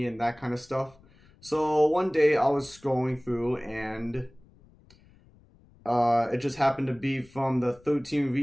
and that kind of stuff. So one day I was scrolling through and it just happened to be from the 13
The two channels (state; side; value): noise; left; rumble, 27 dB below the sound